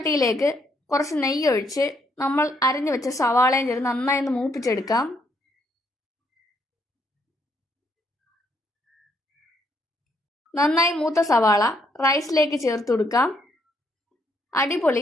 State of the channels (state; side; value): normal; both; correlation 0.72